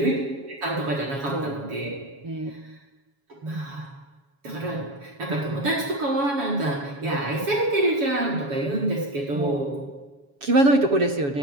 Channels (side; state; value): left; late; 7.2 ms